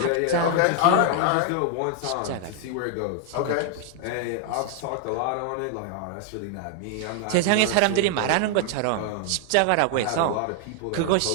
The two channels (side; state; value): both; different; correlation 0.00